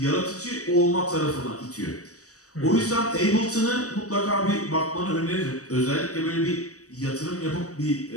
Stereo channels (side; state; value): right; late; 0.66 ms